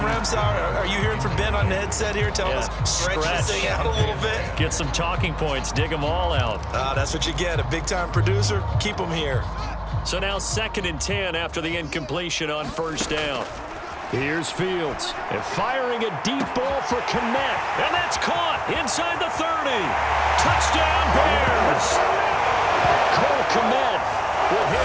Are you hearing from Ben on the headset here? Tell us, stretch this thing out a little bit. Get some talking points. Dig them all out. That's what you get. A big-time producer. Keep them here. So now 2nd and 10 after the incompletion on first down. Here's Fields. And firing a deep ball for Kmet. And that's caught inside the 30. Touchdown, Bears. Cole Kmet with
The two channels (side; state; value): both; identical; correlation 1.00